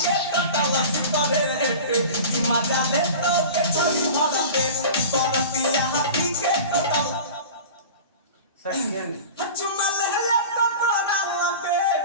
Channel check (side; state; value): both; inverted; correlation -0.35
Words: मजा ले तो के छोड़ी भर पे बरतिया हाथी के टटल सच चुम्मा ले ले तो तोरा पे